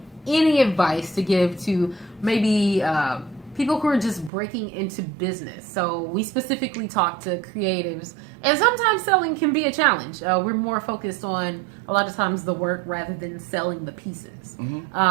any advice to give to maybe people who are just breaking into business? So we specifically talk to creatives, and sometimes selling can be a challenge. We're more focused on a lot of times the work rather than selling the pieces.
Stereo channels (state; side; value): drops out; left; at 4.3 s